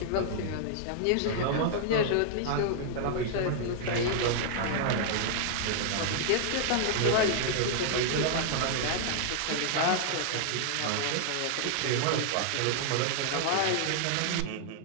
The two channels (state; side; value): different; both; correlation -0.01